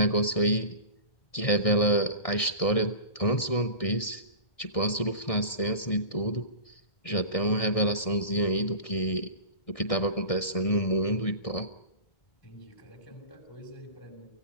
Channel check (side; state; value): right; late; 1.6 ms